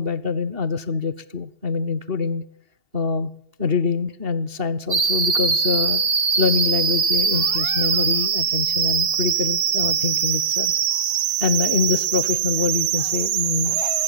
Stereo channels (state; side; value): late; left; 2.8 ms